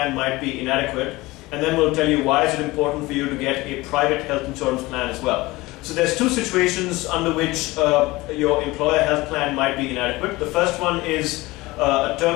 might be inadequate, and then we'll tell you why is it important for you to get a private health insurance plan as well. So there's two situations under which your employer health plan might be inadequate. The first one is a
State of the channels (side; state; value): right; quieter; 20.6 dB